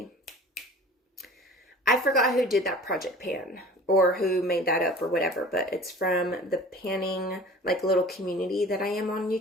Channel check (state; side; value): normal; both; correlation 0.43